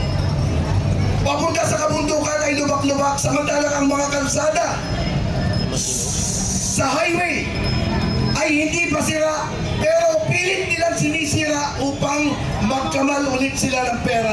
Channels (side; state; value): both; identical; correlation 1.00